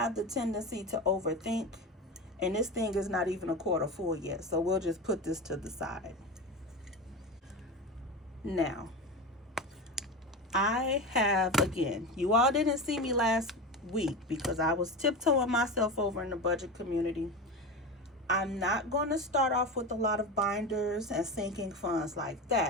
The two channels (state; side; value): normal; both; correlation 0.24